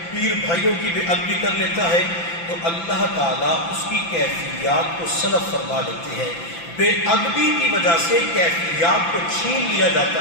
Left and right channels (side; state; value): right; late; 5.9 ms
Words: پیر بھائیوں کی بے ادبی کر لیتا ہے، تو اللہ تعالیٰ اس کی کیفیات کو سلب فرما لیتے ہیں۔ بے ادبی کی وجہ سے کیفیات کو چھین لیا